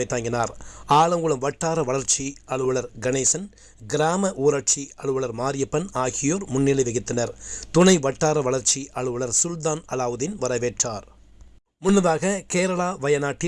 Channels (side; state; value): both; identical; correlation 1.00